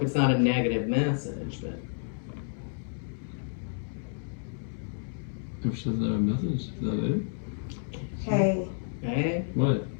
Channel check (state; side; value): silent; right; 58 dB below the other